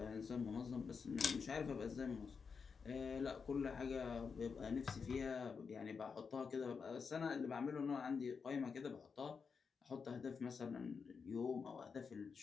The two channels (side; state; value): right; quieter; 5.6 dB